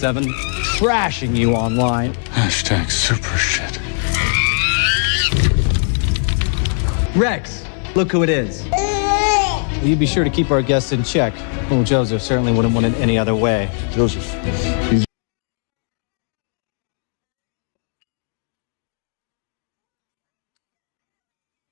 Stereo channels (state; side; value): silent; right; 57 dB below the other